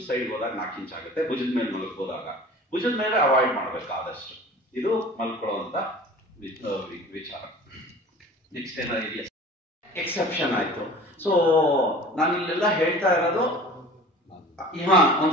ಸೈಡ್ ಹೋದಾಗ 4 ಇಂಚ್ ಆಗುತ್ತೆ. ಭುಜದ ಮೇಲೆ ಮಲಗ್ಬೋದಾಗ ಭುಜದ ಮೇಲೆ ಅವಾಯ್ಡ್ ಮಾಡ್ಬೇಕು ಆದಷ್ಟು. ಇದು ಮಲ್ಕೊಳ್ಳುವಂತ ವಿಚಾರ. ನೆಕ್ಸ್ಟ್ ಏನಾದ್ರು ಇದೆಯಾ? ಎಕ್ಸೆಪ್ಷನ್ ಆಯ್ತು. ಸೊ ನಾನು ಇಲ್ಲೆಲ್ಲ ಹೇಳ್ತಾ ಇರೋದು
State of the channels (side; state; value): both; normal; correlation 0.42